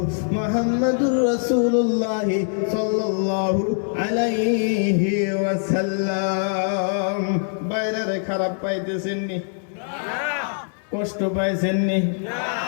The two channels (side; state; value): right; silent; digital silence